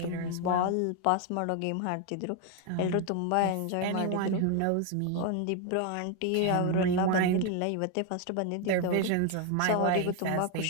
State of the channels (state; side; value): different; both; correlation 0.01